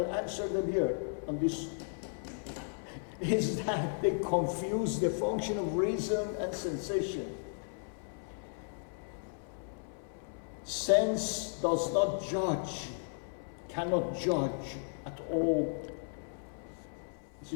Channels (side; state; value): right; silent; 54 dB below the other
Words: answer them here on this, is that they confuse the function of reason and sensation. Sense does not judge, cannot judge at all. You